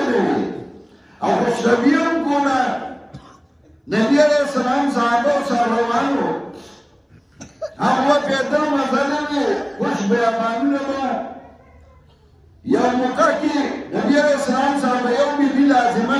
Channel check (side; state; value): both; identical; correlation 1.00